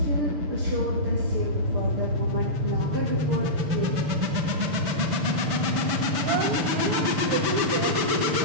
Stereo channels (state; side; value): late; left; 6.8 ms